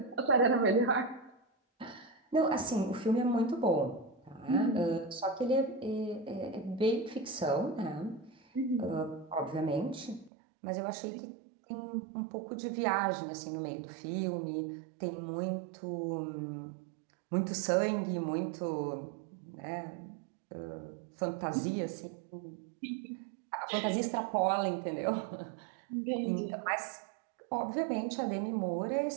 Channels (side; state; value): left; drops out; at 10.3 s